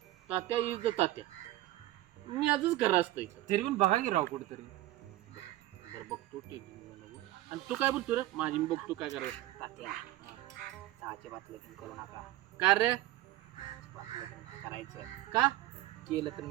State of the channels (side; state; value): left; quieter; 16.1 dB